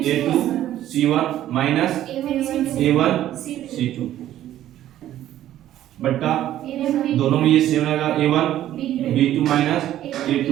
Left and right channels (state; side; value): quieter; left; 12.6 dB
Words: a2 c1 minus a1 c2 बट्टा दोनों में ये सेम रहेगा a1 b2 minus a2